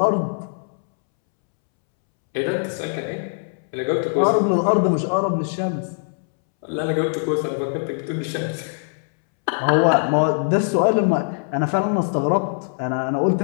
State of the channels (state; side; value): silent; right; 64 dB below the other